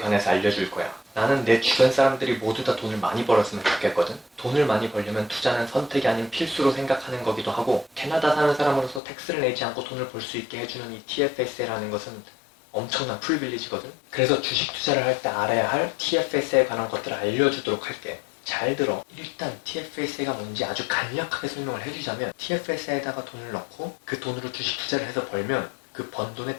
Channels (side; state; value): right; drops out; at 9.0 s